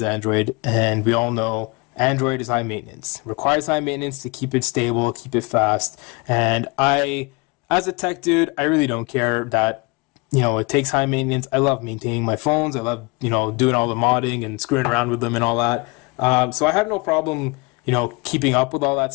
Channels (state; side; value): quieter; right; 27.7 dB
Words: Android, and we all know Android is high maintenance. Requires high maintenance to keep it stable, keep it fast. And as a tech dude, I really don't care that, it takes high maintenance. I love maintaining my phones. I love, doing all the modding and screwing around with them and all that. So I have no problem, keeping up with all that